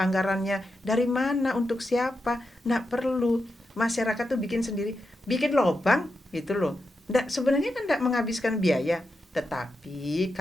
dari mana, untuk siapa? Nggak perlu. Masyarakat tuh bikin sendiri, bikin lubang gitu loh. Sebenarnya kan nggak menghabiskan biaya. Tetapi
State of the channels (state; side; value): normal; both; correlation 0.87